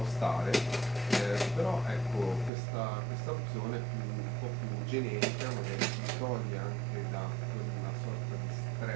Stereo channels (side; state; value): left; drops out; at 2.5 s